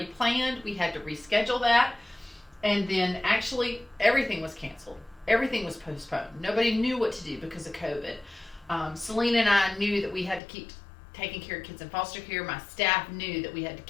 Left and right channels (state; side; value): drops out; right; at 10.4 s